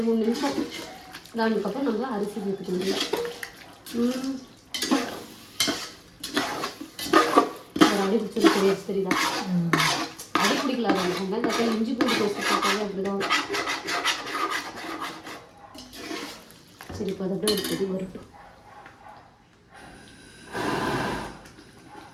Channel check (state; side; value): identical; both; correlation 1.00